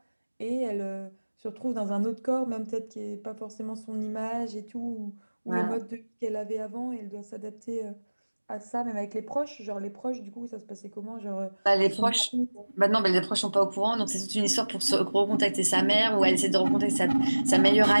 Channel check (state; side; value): inverted; both; correlation -1.00